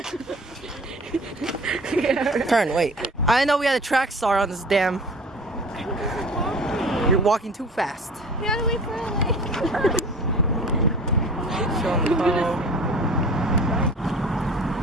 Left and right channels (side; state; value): both; normal; correlation 0.42